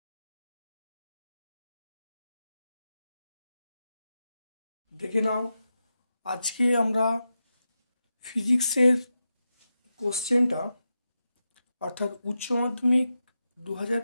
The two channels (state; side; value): inverted; both; correlation -0.89